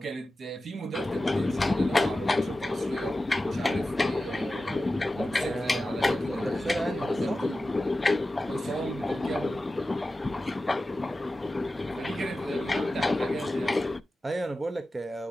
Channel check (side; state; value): both; normal; correlation 0.94